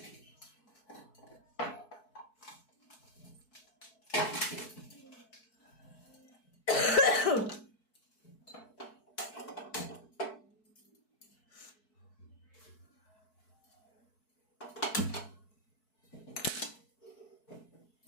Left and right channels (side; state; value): right; late; 4.6 ms